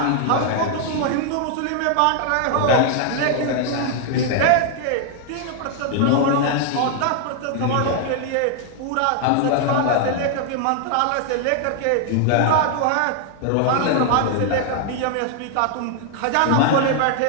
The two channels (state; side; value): different; both; correlation 0.00